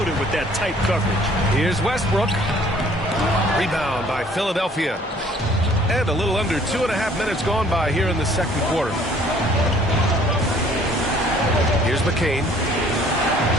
it with that tight coverage. Here's Westbrook. Rebound by Philadelphia. And a little under 2.5 minutes gone by here in the second quarter. Here's McCain.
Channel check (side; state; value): both; normal; correlation 0.57